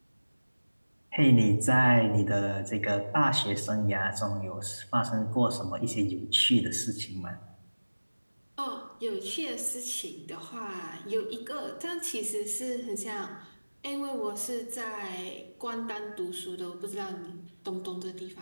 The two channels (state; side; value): inverted; both; correlation -1.00